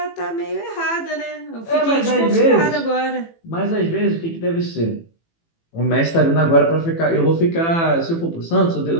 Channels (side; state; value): right; late; 18 ms